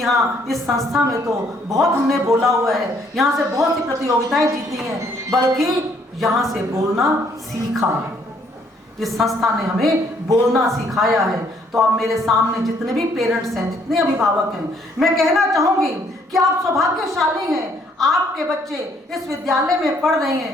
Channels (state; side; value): normal; both; correlation 0.66